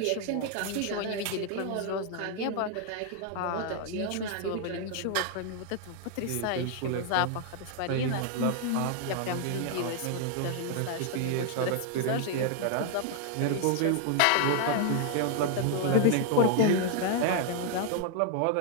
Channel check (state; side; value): different; both; correlation 0.00